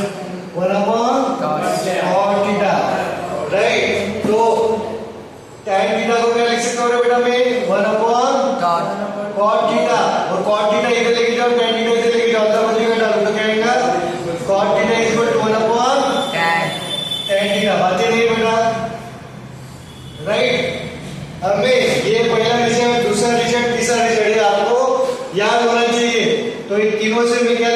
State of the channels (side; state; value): both; identical; correlation 1.00